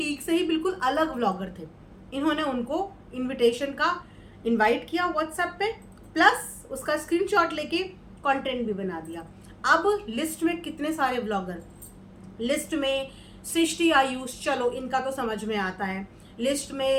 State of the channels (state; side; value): identical; both; correlation 1.00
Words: से ही बिल्कुल अलग व्लॉगर थे। इन्होंने उनको इनविटेशन का इनवाइट किया व्हाट्सएप पे, प्लस उसका स्क्रीनशॉट लेके कंटेंट भी बना दिया। अब लिस्ट में कितने सारे व्लॉगर, लिस्ट में सृष्टि आयुष, चलो इनका तो समझ में आता है, लिस्ट